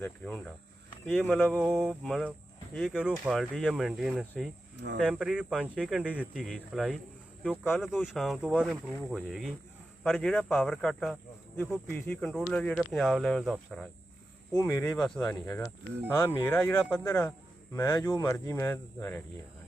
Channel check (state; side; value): normal; both; correlation 0.91